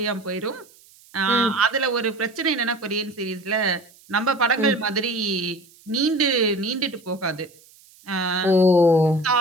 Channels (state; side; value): noise; right; hiss, 27 dB below the sound